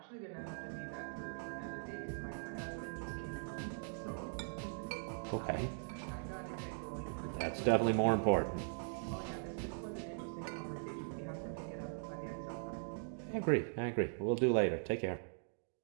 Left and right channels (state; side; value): silent; left; digital silence